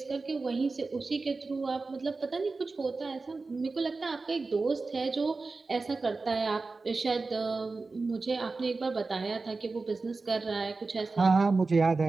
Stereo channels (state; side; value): quieter; left; 3.9 dB